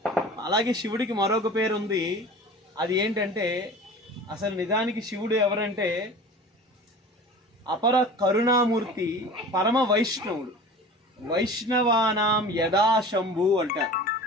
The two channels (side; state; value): both; normal; correlation 0.39